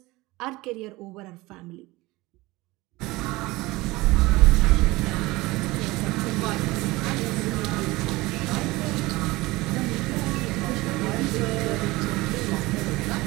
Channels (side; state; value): left; quieter; 20.8 dB